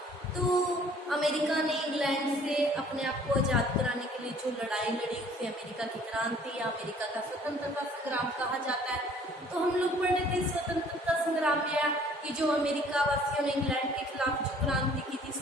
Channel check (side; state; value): both; normal; correlation 0.55